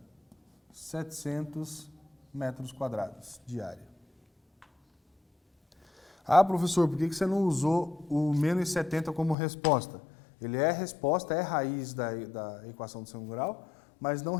700 metros quadrados de área. Ah, professor, por que você não usou o menos 70 como resposta? Ele é resposta, é raiz da equação do segundo grau, mas não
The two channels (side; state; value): right; drops out; at 9.3 s